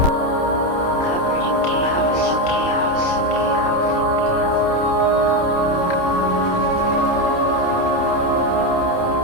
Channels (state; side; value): late; right; 28 ms